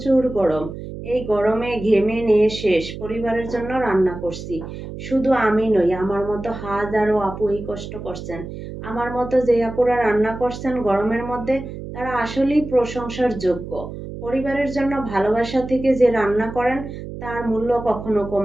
গরম। এই গরমে ঘেমে নিয়ে শেষ। পরিবারের জন্য রান্না করছি। শুধু আমি নই, আমার মতো হাজারো আপু এই কষ্ট করছেন। আমার মতো যে আপুরা রান্না করছেন গরমের মধ্যে, তারা আসলেই প্রশংসার যোগ্য। পরিবারের জন্য ভালোবাসা থেকে যে রান্না করেন তার মূল্য কখনো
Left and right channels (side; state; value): right; noise; hum, 10 dB below the sound